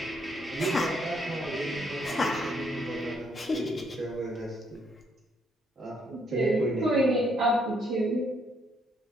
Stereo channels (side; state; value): both; normal; correlation 0.71